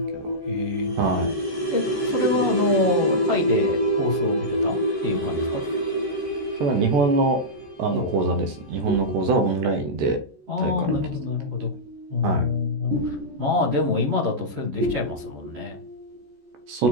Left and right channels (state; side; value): late; left; 14 ms